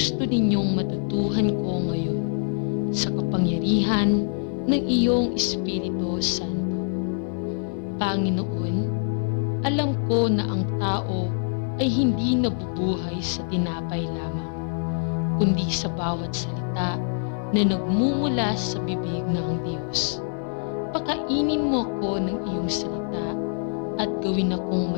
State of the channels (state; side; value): silent; right; digital silence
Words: ninyong matutuhan ko ngayon sa kapangyarihan ng iyong Espiritu Santo. Panginoon, alam ko na ang tao ay hindi nabubuhay sa tinapay lamang, kundi sa bawat salita na nagmumula sa bibig ng Diyos. Pakainin mo ako ng iyong salita at gawin akong